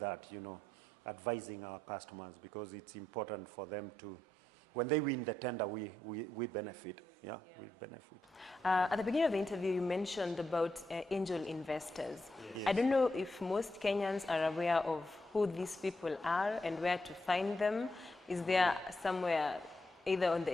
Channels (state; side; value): normal; both; correlation 0.82